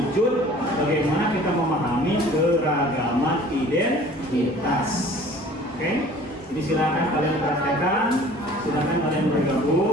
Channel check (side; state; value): both; normal; correlation 0.48